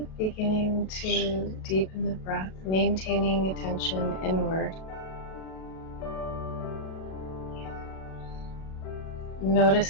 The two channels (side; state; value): right; late; 37 ms